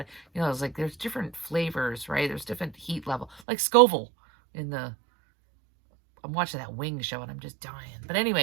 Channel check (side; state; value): left; drops out; at 3.4 s